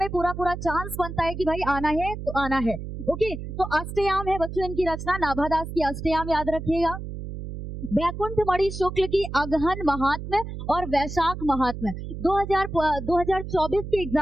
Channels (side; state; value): right; noise; hum, 8 dB below the sound